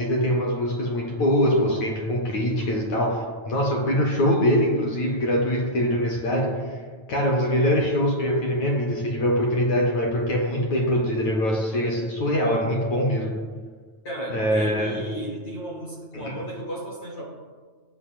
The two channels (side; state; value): right; late; 9.1 ms